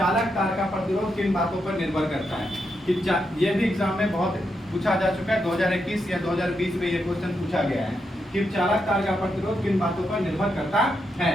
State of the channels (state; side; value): normal; both; correlation 0.83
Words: तार का प्रतिरोध किन बातों पर निर्भर करता है। कि ये भी एग्जाम में बहुत पूछा जा चुका है, 2021 या 2020 में ये क्वेश्चन पूछा गया है कि चालक तार का प्रतिरोध किन बातों पर निर्भर करता